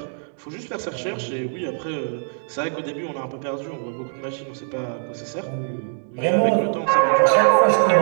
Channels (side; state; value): left; silent; 64 dB below the other